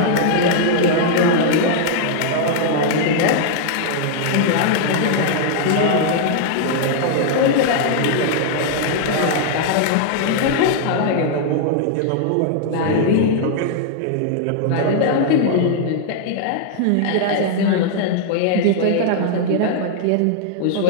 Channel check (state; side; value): different; both; correlation -0.01